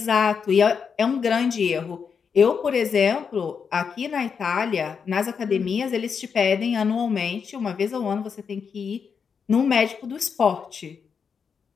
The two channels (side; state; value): right; quieter; 6.3 dB